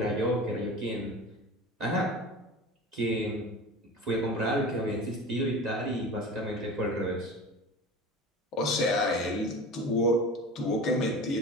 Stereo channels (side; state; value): both; normal; correlation 0.34